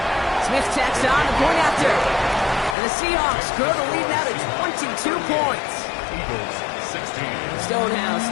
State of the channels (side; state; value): right; drops out; at 2.8 s